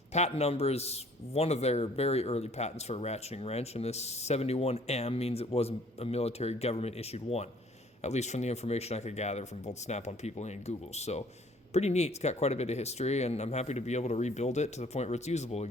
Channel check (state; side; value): normal; both; correlation 0.57